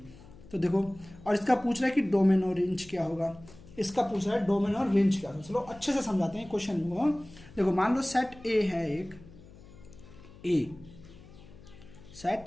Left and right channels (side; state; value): left; noise; hum, 20 dB below the sound